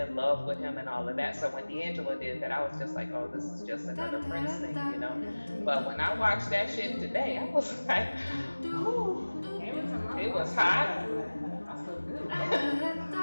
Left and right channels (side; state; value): both; inverted; correlation -1.00